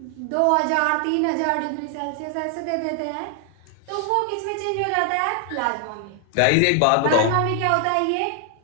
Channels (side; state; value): both; different; correlation 0.00